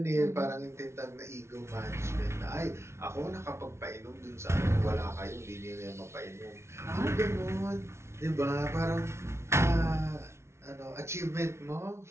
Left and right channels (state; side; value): late; left; 0.13 ms